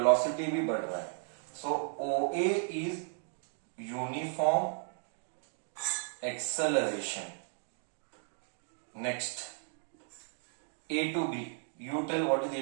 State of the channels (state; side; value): silent; left; 54 dB below the other